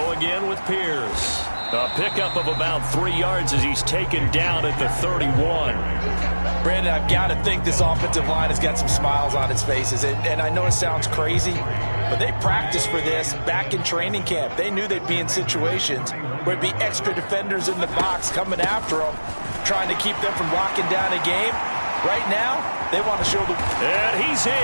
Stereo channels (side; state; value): both; inverted; correlation -1.00